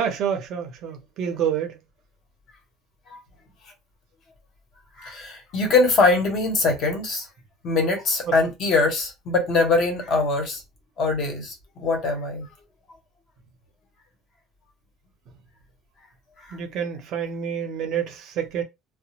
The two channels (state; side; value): normal; both; correlation 0.38